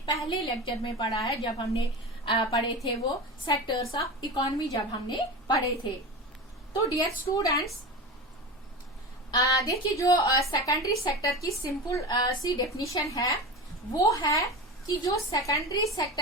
पहले लेक्चर में पढ़ा है, जब हमने पढ़े थे वो सेक्टर्स ऑफ इकोनॉमी जब हमने पढ़े थे। तो डियर स्टूडेंट्स, देखिए जो सेकेंडरी सेक्टर की सिंपल सी डेफिनेशन है वो है कि जो सेकेंडरी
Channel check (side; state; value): both; normal; correlation 0.26